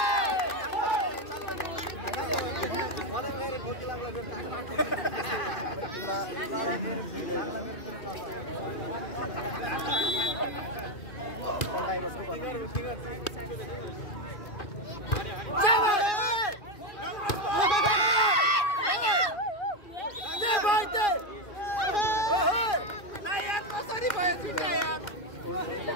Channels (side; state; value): right; late; 2.4 ms